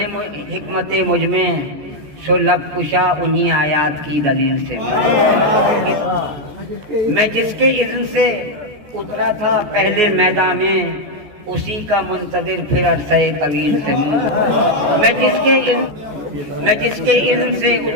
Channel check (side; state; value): left; late; 14 ms